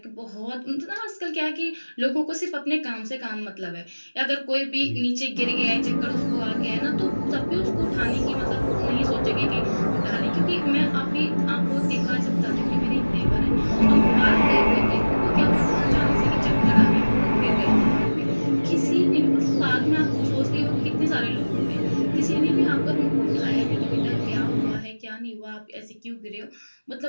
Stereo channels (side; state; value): both; inverted; correlation -1.00